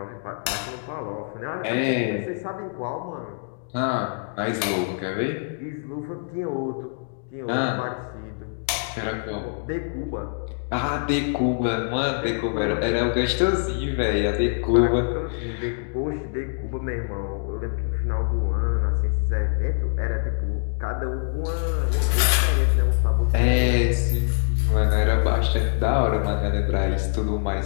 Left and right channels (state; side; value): silent; right; digital silence